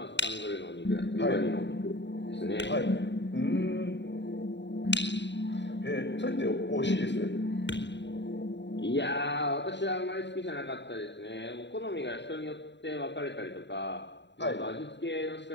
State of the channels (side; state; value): right; late; 0.52 ms